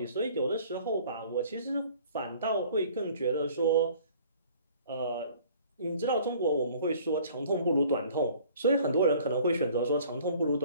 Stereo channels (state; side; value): inverted; both; correlation -0.53